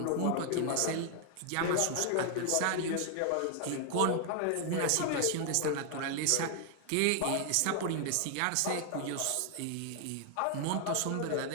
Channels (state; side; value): different; both; correlation 0.00